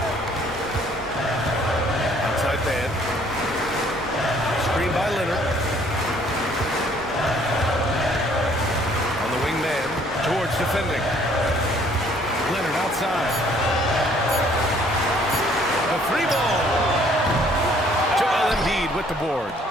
Outside man. Screen by Leonard. On the wing man. George defending. Leonard outside. The 3-ball. Joel Embiid with the board.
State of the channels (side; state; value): both; normal; correlation 0.61